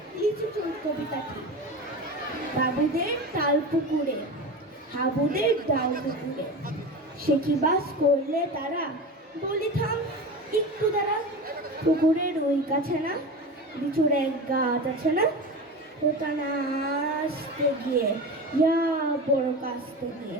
লিচু চোর কবিতাটি। বাবুদের তাল পুকুরে, হাবুদের ডাল পুকুরে, সে কি বাস করলে তারা, বলি থাম একটু দাঁড়া। পুকুরের ওই কাছে না লিচুর এক গাছ আছে না, ওটা না আসতে গিয়ে ইয়া বড় কাছতে গিয়ে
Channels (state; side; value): normal; both; correlation 0.28